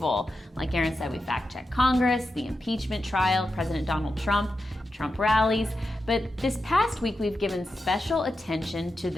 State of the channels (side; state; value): both; normal; correlation 0.90